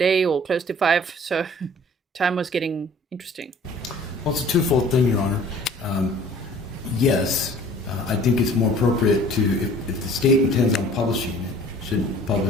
or close to 5, so time was getting interesting. Well, it's a twofold thing, Your Honor. Yes, I think it's more appropriate to, if the state intends on publishing it, should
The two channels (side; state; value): both; normal; correlation 0.50